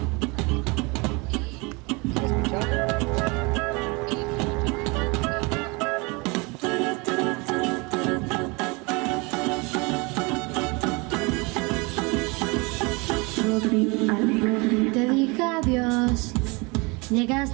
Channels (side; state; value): left; quieter; 27.7 dB